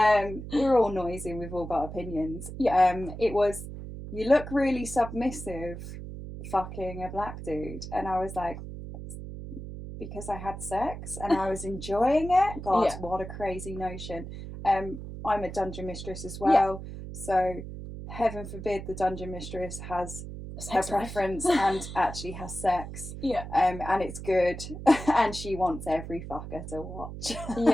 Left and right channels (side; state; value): right; noise; hum, 10 dB below the sound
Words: We're all noisy, we've all got opinions. It was, you look really submissive fucking a black dude, and I was like, because I had sex and I was enjoying it. God, what a crazy notion. I'm a dungeon mistress as well, so heaven forbid the dungeon mistress has her preference and actually has sex. And it's good, and she wants every fucker to watch.